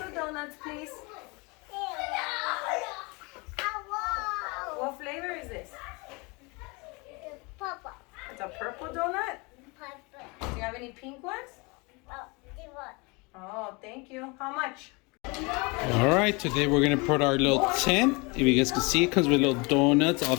donuts, please. What flavor is this? Purple. It's a purple donut? Purple. Do you have any pink ones? Oh, they want. Oh, thank you. How much? All right, today we're gonna put our little tent. If you guys can see, it comes with little donuts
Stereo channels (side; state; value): right; quieter; 28.0 dB